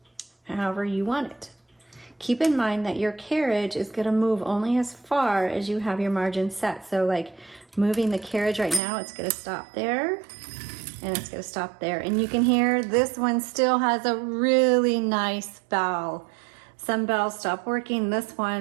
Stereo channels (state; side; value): drops out; left; at 8.8 s